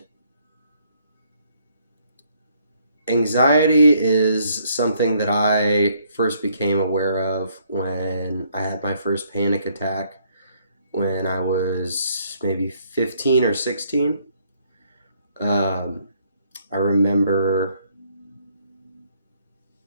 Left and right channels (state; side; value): inverted; both; correlation -0.68